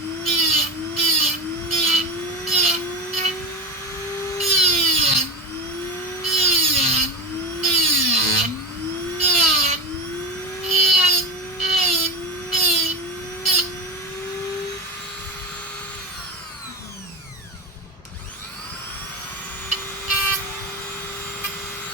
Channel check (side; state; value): both; normal; correlation 0.20